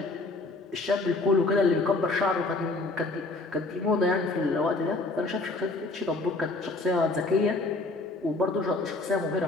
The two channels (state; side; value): quieter; right; 3.2 dB